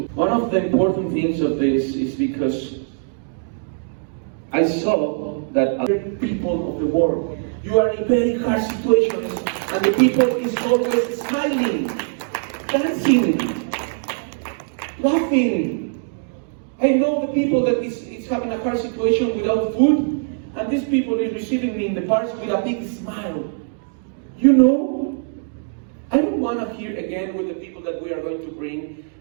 One of the important things of this is because I saw that other people of the world, you are in very hard situations, and the people is always smiling, dancing, laughing. I know the people that is having a hard situation without food, and these people is receiving me in the parks with a big smile. You know, I don't want to hear again with the people that we are going to bring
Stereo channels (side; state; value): left; silent; digital silence